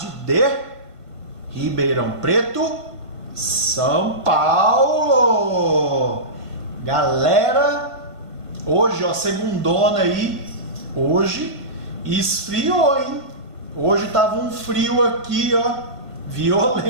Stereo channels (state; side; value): late; left; 1.5 ms